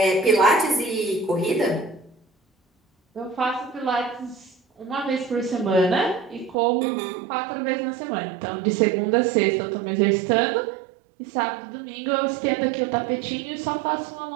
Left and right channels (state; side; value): drops out; left; at 6.6 s